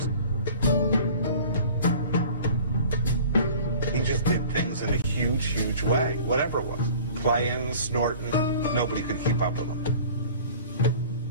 He just did things in a huge, huge way, whatever it was. Playing, snorting, nobody could keep up with him.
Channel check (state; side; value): inverted; both; correlation -0.45